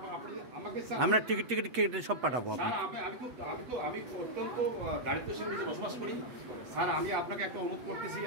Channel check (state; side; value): late; left; 8.2 ms